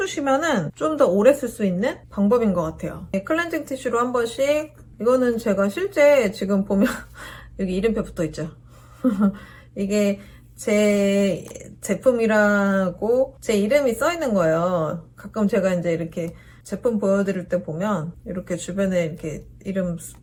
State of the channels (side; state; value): both; identical; correlation 1.00